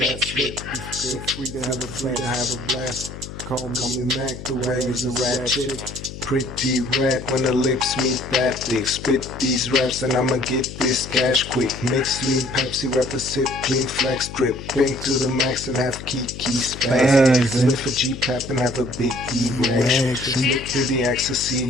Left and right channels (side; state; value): left; noise; hum, 12 dB below the sound